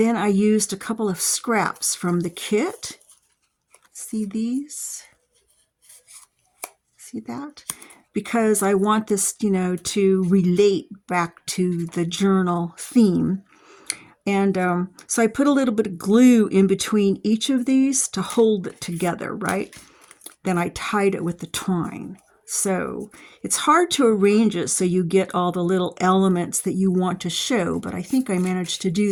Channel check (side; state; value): both; identical; correlation 1.00